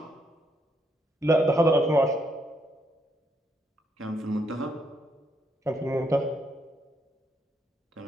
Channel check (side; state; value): both; normal; correlation 0.75